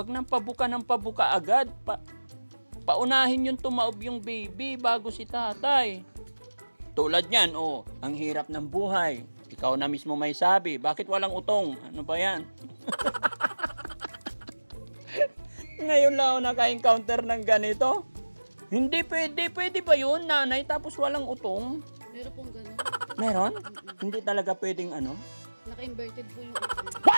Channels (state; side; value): inverted; both; correlation -1.00